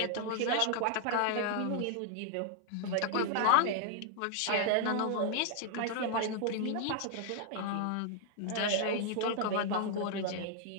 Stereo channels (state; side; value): different; both; correlation 0.00